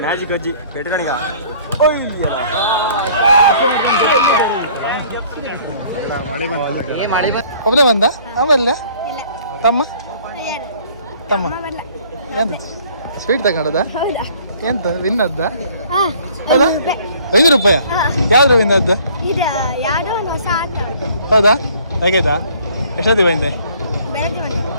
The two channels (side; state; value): both; inverted; correlation -0.56